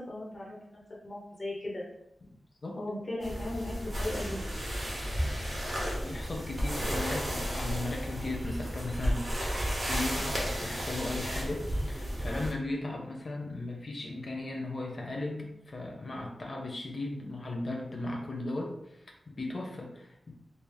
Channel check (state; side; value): normal; both; correlation 0.94